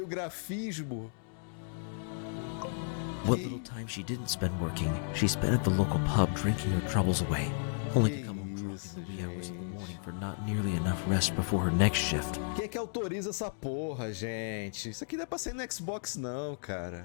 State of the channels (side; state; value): right; silent; digital silence